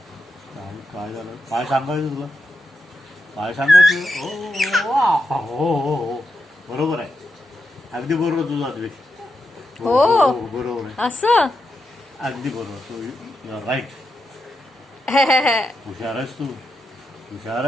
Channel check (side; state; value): both; normal; correlation 0.86